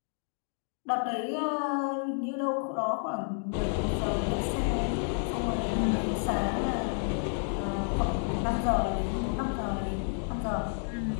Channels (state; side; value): silent; right; 55 dB below the other